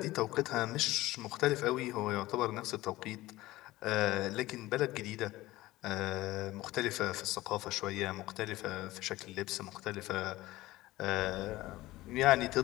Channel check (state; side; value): quieter; right; 17.8 dB